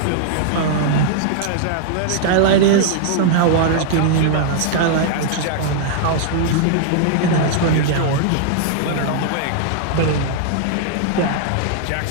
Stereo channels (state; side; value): different; both; correlation -0.01